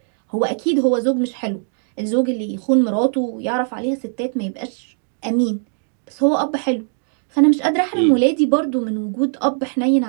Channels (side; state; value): left; silent; 64 dB below the other